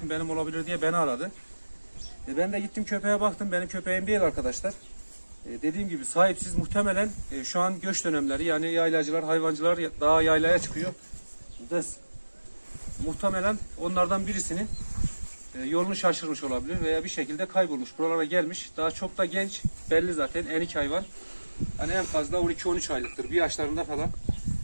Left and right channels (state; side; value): inverted; both; correlation -1.00